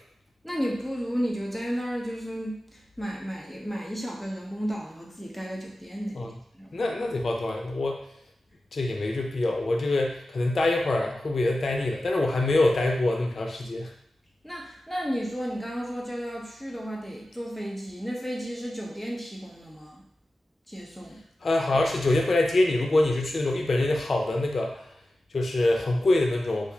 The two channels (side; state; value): both; normal; correlation 0.94